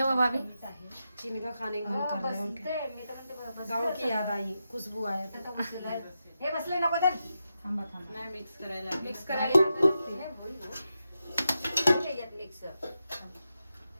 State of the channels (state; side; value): inverted; both; correlation -0.88